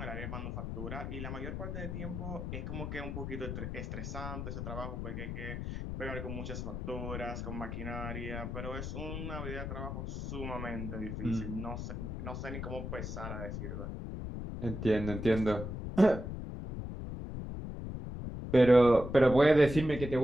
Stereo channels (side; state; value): left; noise; rumble, 5 dB below the sound